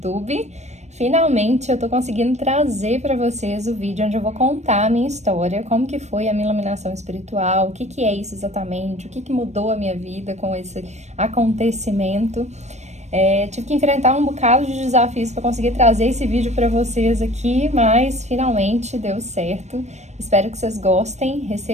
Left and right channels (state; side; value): late; left; 0.33 ms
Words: Finalmente eu tô conseguindo trazer para vocês o vídeo onde eu vou contar a minha história, como que foi a minha iluminação espiritual, o que que é isso exatamente, o que que mudou a minha vida com esse acontecimento. Tive que enfrentar um bocado de desafios para conseguir trazer esse vídeo para vocês aqui, mas finalmente deu certo. Espero que vocês gostem,